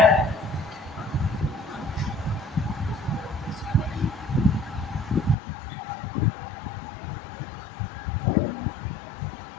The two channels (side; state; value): right; drops out; at 5.4 s